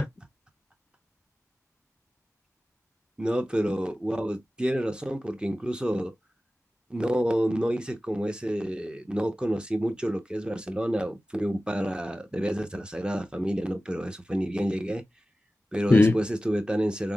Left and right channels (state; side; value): normal; both; correlation 0.96